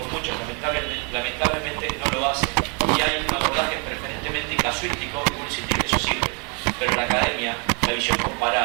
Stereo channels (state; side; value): quieter; left; 35.1 dB